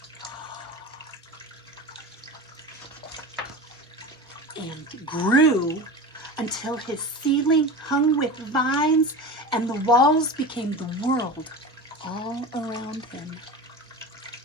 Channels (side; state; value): both; normal; correlation 0.30